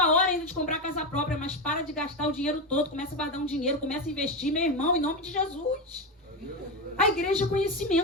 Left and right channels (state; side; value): normal; both; correlation 0.14